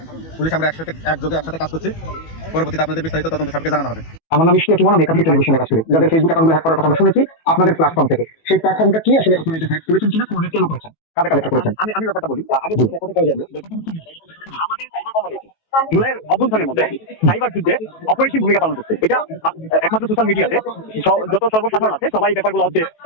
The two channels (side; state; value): right; late; 18 ms